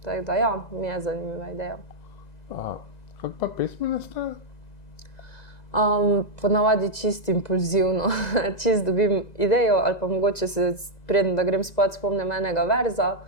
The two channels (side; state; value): right; late; 2.0 ms